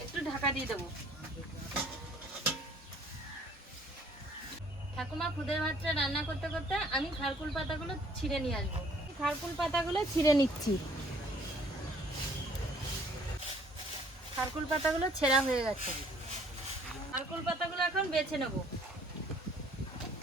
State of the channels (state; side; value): normal; both; correlation 0.58